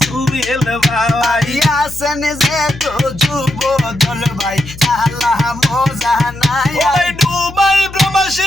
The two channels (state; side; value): noise; left; hum, 15 dB below the sound